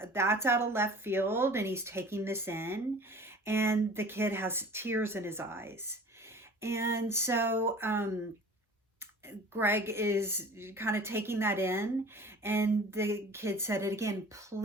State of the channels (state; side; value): normal; both; correlation 0.44